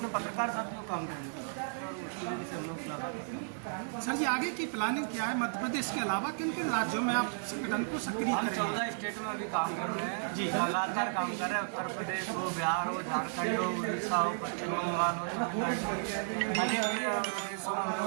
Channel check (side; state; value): left; silent; digital silence